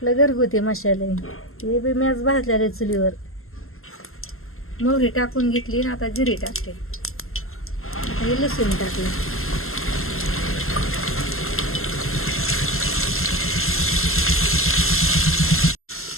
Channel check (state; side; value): late; right; 0.62 ms